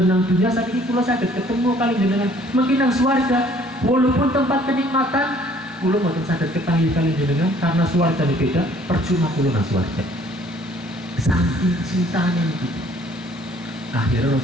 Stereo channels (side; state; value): both; normal; correlation 0.58